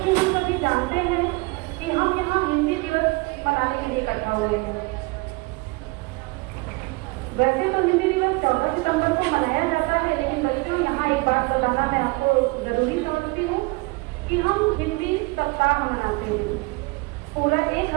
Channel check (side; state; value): left; quieter; 26.0 dB